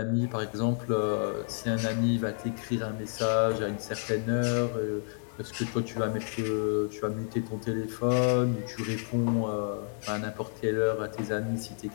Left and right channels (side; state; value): right; silent; 57 dB below the other